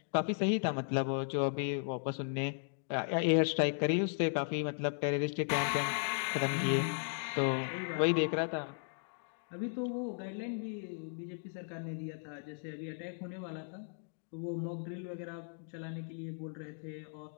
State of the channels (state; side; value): silent; right; digital silence